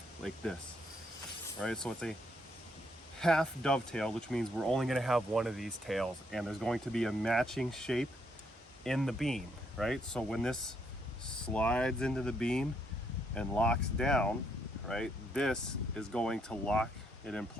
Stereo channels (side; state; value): both; normal; correlation 0.73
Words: like this. Right, so it's a half dovetail, which means we're only going to have one of these tails, and there's going to be a matching shape in the beam, right? So when this slides into the beam and locks down, right, this is going to lock it in